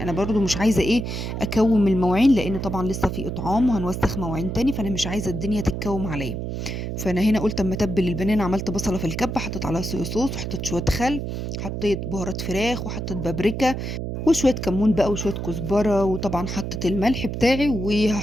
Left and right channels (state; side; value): noise; right; hum, 4 dB below the sound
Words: برضو مش عايزه ايه اكوم المواعين، لان طبعا لسه في اطعام وهنوسخ مواعين تاني، فانا مش عايزه الدنيا تتكوم عليا. فانا هنا قلت اما اتبل البانيه، عملت بصله في الكبه، حطيت عليها صويا صوص، وحطيت شويه خل، حطيت بهارات فراخ، وحطيت بابريكا، وشويه كمون بقى، وشويه كزبره، وطبعا حطيت الملح بتاعي،